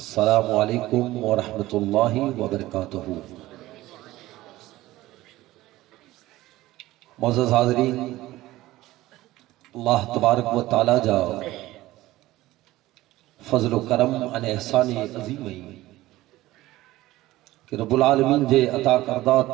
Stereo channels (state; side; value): quieter; left; 17.0 dB